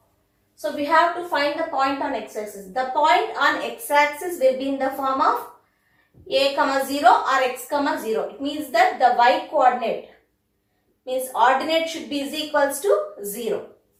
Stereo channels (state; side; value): identical; both; correlation 1.00